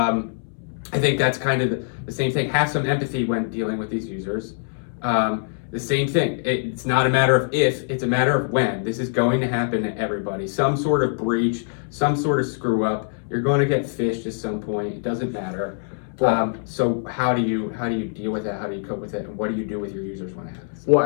think that's kind of the same thing. Have some empathy when dealing with these users. The same thing. It's not a matter of if, it's a matter of when. This is going to happen to everybody. Some sort of breach, some sort of screw up. You're going to get phished at some point. It doesn't matter. So how do you deal with that? How do you cope with it? And what do you do with your users when it happens?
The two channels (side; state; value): right; silent; 63 dB below the other